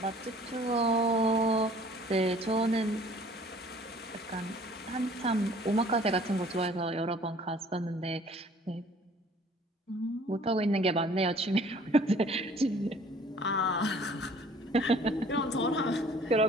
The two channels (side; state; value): both; normal; correlation 0.53